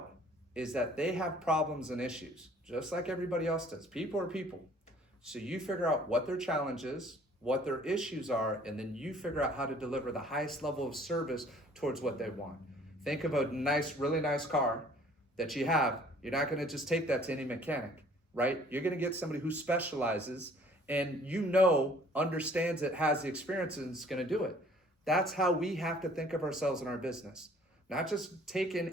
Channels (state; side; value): normal; both; correlation 0.55